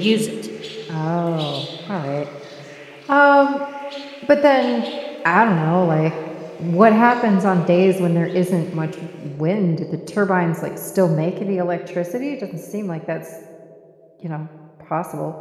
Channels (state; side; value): identical; both; correlation 1.00